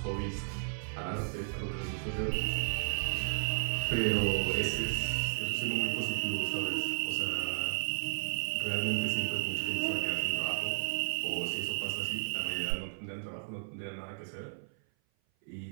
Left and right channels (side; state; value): left; silent; 55 dB below the other